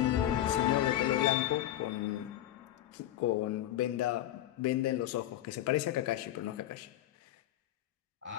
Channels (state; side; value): quieter; right; 13.1 dB